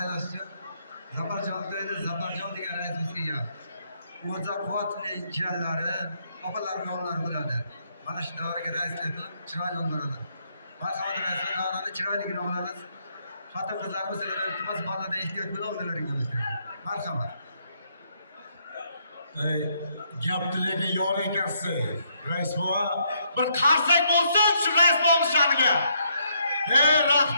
uchun Zafarjon to'yida Zafarjon degan raisimiz kelgan. O'za quvvatli jiyanlari, opalarning o'g'illari bo'ladi. Mana shu davraga raislik qilib chiroyli olib boradi. Marhamat rais davrani chiroyligini olamiz. Xotin qizlarimiz iltimos bolada ehtiyot bilan o'zlaringiz. Marhamat. Gap tilagi yor ekansiz, rais bova. Bir qarsak bo'lsin shu rais bova shaniga.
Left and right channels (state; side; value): inverted; both; correlation -0.73